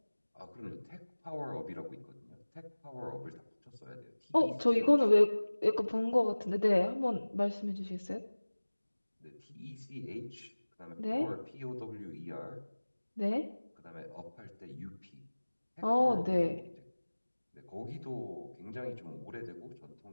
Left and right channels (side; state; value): both; inverted; correlation -1.00